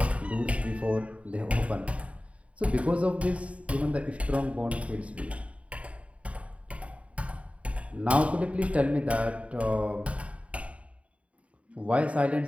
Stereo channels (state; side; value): late; left; 0.065 ms